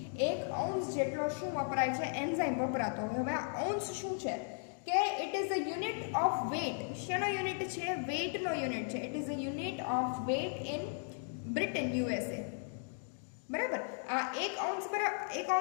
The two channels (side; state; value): right; silent; 54 dB below the other